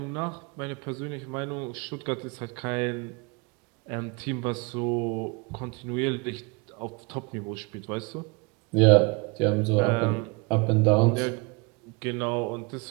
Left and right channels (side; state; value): left; quieter; 29.0 dB